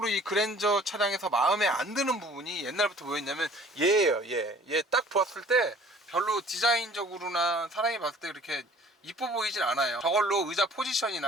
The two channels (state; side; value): normal; both; correlation 0.51